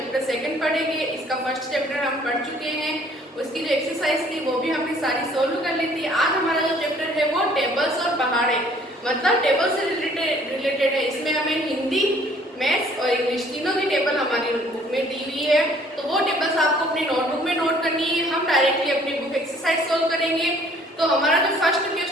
2 पढ़ेंगे। इसका फर्स्ट चैप्टर हम पढ़ चुके हैं, उसकी जो एक्सरसाइज थी वो भी हमने सारी सोल्व कर ली थी। आज हमारा जो चैप्टर है वो टेबल्स और पहाड़े, मतलब टेबल से रिलेटेड है। इसमें हमें हिंदी, मैथ्स और इंग्लिश तीनों की टेबल हमारी बुक में दी हुई है, तो वो टेबल्स आपको अपनी नोटबुक में नोट करनी है। हम डायरेक्टली अपनी बुक एक्सरसाइज सोल्व करेंगे। तो हमारा जो फर्स्ट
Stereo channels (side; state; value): both; normal; correlation 0.58